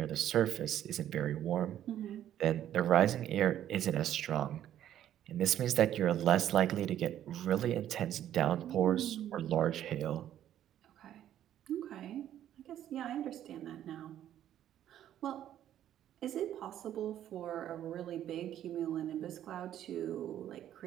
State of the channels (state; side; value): quieter; left; 11.4 dB